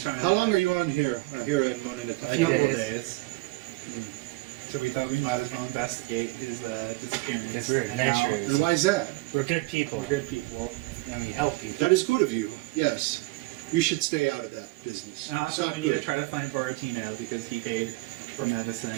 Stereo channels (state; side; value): quieter; left; 22.7 dB